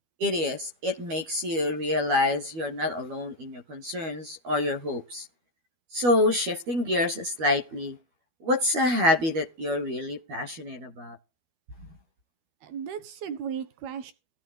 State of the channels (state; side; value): late; left; 12 ms